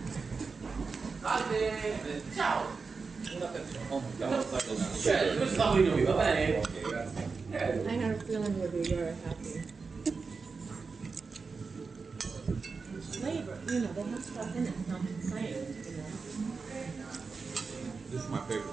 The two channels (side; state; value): left; quieter; 4.7 dB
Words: Oh my God. I had a feeling you'd be very happy. Flavor, you know, they have stuff in it, it's not the same, you know. This is my